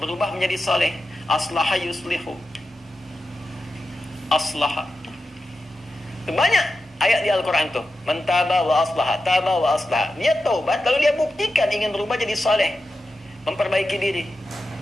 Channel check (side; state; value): both; normal; correlation 0.91